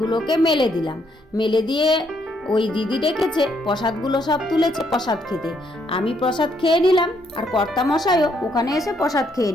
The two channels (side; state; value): both; normal; correlation 0.73